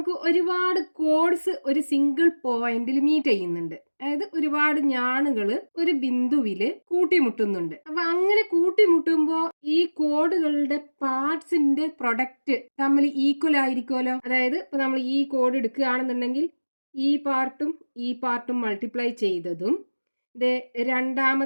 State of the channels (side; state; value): both; inverted; correlation -1.00